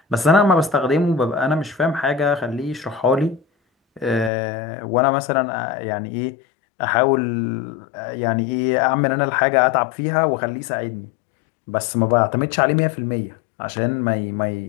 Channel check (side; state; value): right; drops out; at 4.3 s